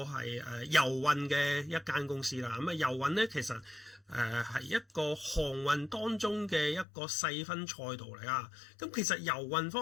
係郵運嘅一間公司啦。咁郵運咧其實係一個航運當中嘅一個細分賽道嚟啊。咁其實郵運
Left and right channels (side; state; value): right; drops out; at 6.9 s